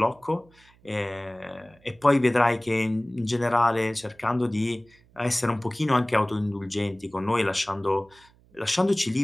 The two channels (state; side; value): noise; right; hum, 30 dB below the sound